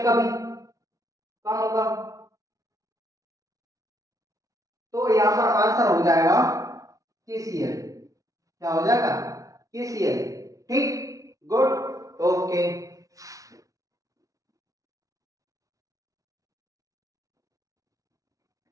का भी कम होगा, तो यहां पर आंसर हो जाएगा KCl। क्या हो जाएगा? KCl। ठीक, गुड, ओके।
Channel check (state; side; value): late; left; 0.17 ms